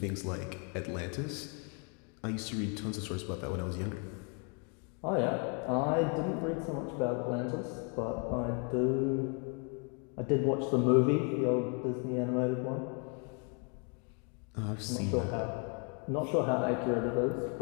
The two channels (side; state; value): right; quieter; 37.0 dB